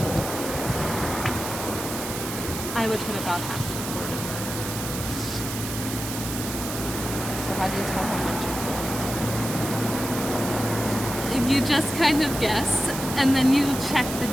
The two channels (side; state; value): right; noise; hiss, 7 dB below the sound